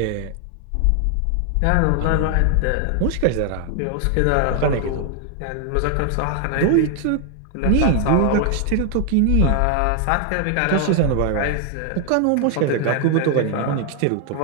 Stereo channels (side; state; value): both; different; correlation 0.00